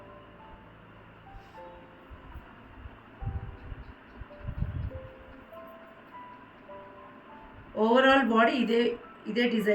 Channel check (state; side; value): identical; both; correlation 1.00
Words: ఓవరాల్ బాడీ ఇదే